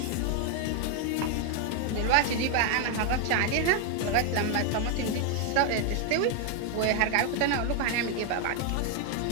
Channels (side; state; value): both; different; correlation 0.01